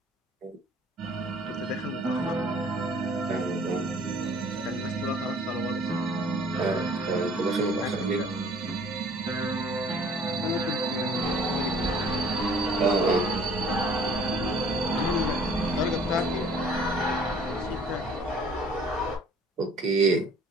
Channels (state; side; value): normal; both; correlation 0.54